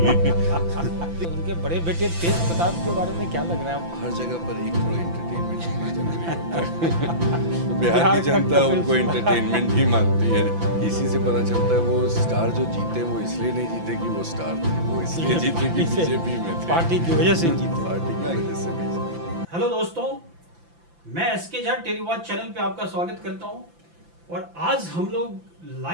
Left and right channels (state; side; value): late; left; 5.9 ms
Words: उनके बड़े बेटे तेज प्रताप के बारे में क्या लग रहा है? हर जगह पर एक थोड़ा एंटरटेनमेंट होना जरूरी होता है। तो बिहार की जनता उनको एंटरटेनमेंट ही मानती है। इसी से पता चलता है वो स्टार जो जीते वो इसलिए नहीं जीते कि वो स्टार थे, वो इसलिए जीते कि बीजेपी में थे, पार्टी की वजह से जीते। पार्टी की वजह से भी। हेलो दोस्तों, मैं एसके झा टेलीवॉच चैनल पे आपका स्वागत करता हूं और आज हम लोग